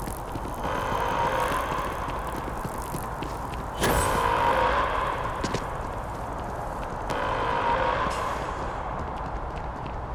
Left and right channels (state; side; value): identical; both; correlation 1.00